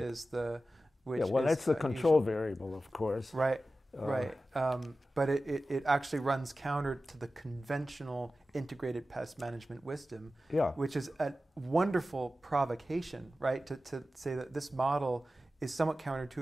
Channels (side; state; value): both; normal; correlation 0.94